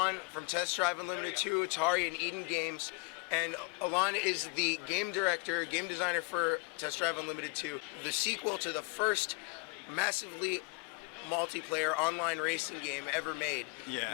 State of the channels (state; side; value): quieter; right; 29.9 dB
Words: from Test Drive Unlimited 2, Atari, and Eden Games. And Alain is the game director, game designer for Test Drive Unlimited 2, the sequel to the first massively multiplayer online racing game ever made. Yeah.